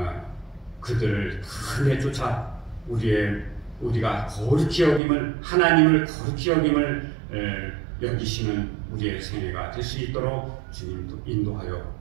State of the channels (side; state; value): left; drops out; at 5.0 s